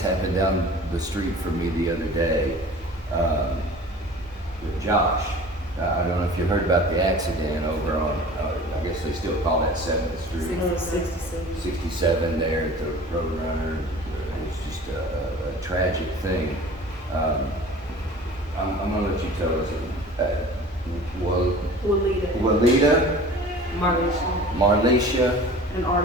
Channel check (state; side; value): normal; both; correlation 0.42